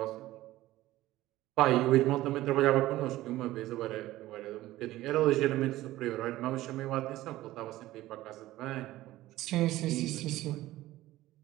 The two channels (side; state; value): left; quieter; 16.1 dB